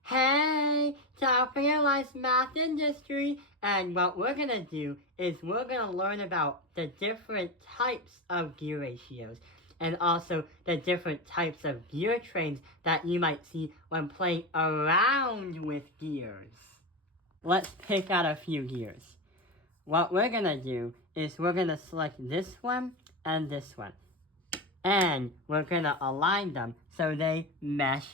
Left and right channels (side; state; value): both; normal; correlation 0.17